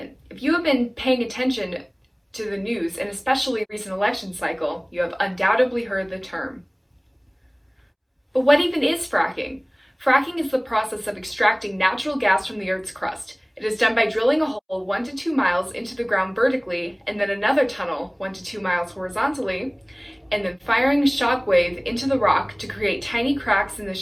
If you have been paying attention to the news, and especially the recent election cycle, you have undoubtedly heard the term. But what even is fracking? Fracking is the process of extracting natural gas from the Earth's crust. It is done by drilling a hole 1 to 2 miles into the ground vertically, and then another tunnel 1 to 2 miles horizontally, and then firing a shock wave into the rock to create tiny cracks in the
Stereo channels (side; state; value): both; identical; correlation 1.00